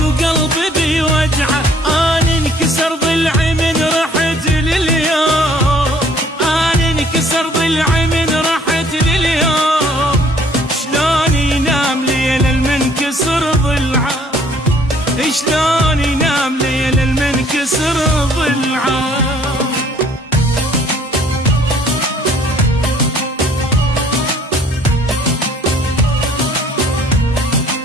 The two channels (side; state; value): both; normal; correlation 0.59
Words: بيوجعه، انا انكسر ضلعي من رحت لليوم، انا انكسر ضلعي من رحت لليوم. شلون ينام ليل المنكسر ضلعه، شلون ينام ليل المنكسر ضلعه.